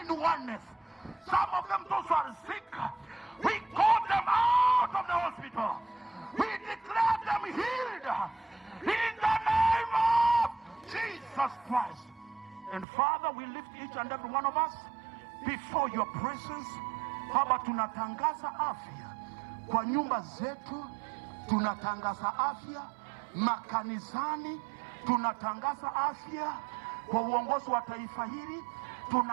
in oneness. Some of them, those who are sick, we call them out of the hospital. We declare them healed in the name of Jesus Christ. And Father, we lift each and every one of us before your presence. Baba, tunatangaza afya kwa nyumba zetu, tunatangaza afya makanisani, tunatangaza afya kwa uongozi wa taifa hili,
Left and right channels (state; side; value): drops out; left; at 12.9 s